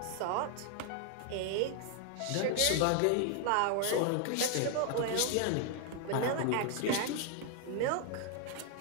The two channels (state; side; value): different; both; correlation 0.00